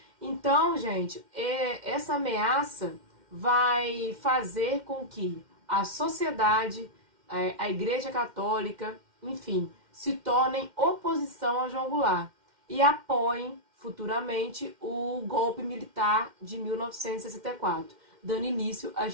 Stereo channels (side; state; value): left; late; 2.1 ms